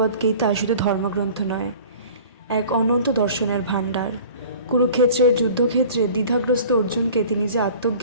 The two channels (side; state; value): both; inverted; correlation -0.44